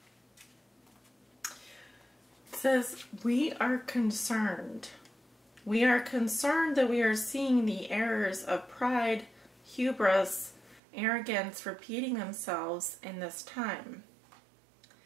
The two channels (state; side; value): drops out; left; at 10.8 s